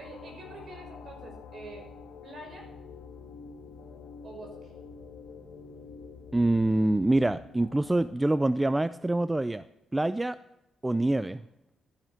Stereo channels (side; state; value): both; normal; correlation 0.98